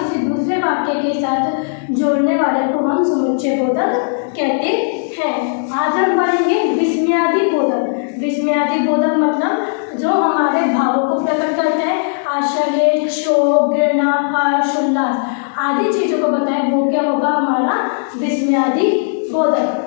दूसरे वाक्य के साथ जोड़ने वाले को हम समुच्चय बोधक कहते हैं। आज हम पढ़ेंगे विस्मयादि बोधक। विस्मयादि बोधक मतलब जो हमारे भावों को प्रकट करता है, आश्चर्य, शोक, घृणा, हर्ष, उल्लास आदि चीजों को बताए, वो क्या होगा? हमारा विस्मयादि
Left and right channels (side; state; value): right; silent; digital silence